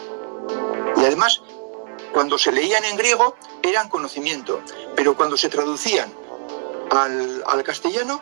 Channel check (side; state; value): left; silent; 65 dB below the other